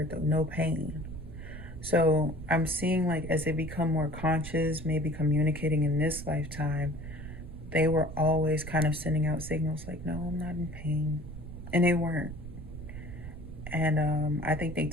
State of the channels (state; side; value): noise; right; rumble, 11 dB below the sound